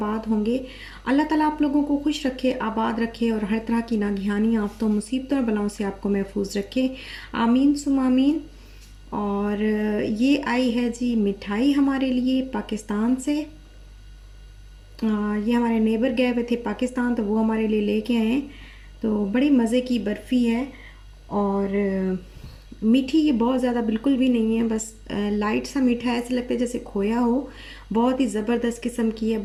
होंगे। अल्लाह ताला आप लोगों को खुश रखे, आबाद रखे और हर तरह की नागहानी आफतों, मुसीबतों और बलाओं से आपको महफूज रखे। आमीन सुम आमीन। और ये आई है जी मिठाई हमारे लिए पाकिस्तान से। ये हमारे नेबर गए हुए थे पाकिस्तान, तो वो हमारे लिए लेके आए हैं। तो बड़ी मज़े की बर्फ़ी है और मीठी ये बहुत ज़्यादा बिल्कुल भी नहीं है, बस लाइट सा मीठा है, ऐसे लगता है जैसे खोया हो। बहुत ही ज़बरदस्त किस्म की है,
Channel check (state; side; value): identical; both; correlation 1.00